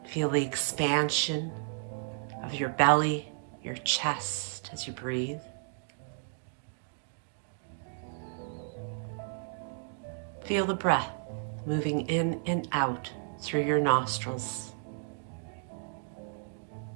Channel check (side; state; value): left; silent; digital silence